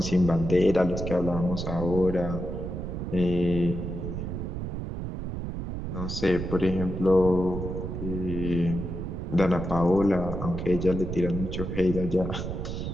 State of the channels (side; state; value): right; noise; rumble, 5 dB below the sound